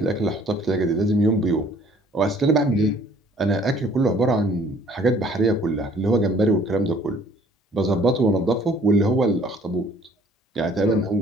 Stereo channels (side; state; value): both; normal; correlation 0.57